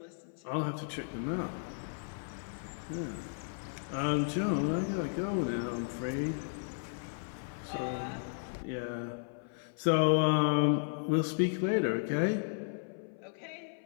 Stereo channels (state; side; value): silent; right; 55 dB below the other